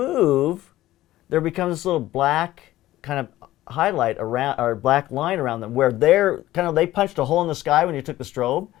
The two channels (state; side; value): quieter; right; 15.4 dB